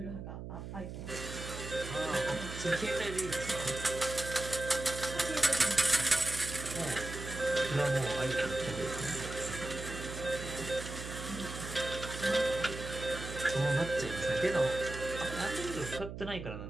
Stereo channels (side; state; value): right; noise; hum, 8 dB below the sound